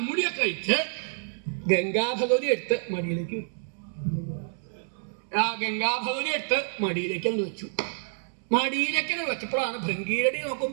കഴിച്ച് ഗംഗാഭഗവതി എടുത്ത് മടിയിലേക്ക് അങ്ങ് വെച്ചു. മടിയിലേക്ക് വെച്ചപ്പോഴാണ് ഭൃംഗീരടി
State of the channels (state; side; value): silent; left; digital silence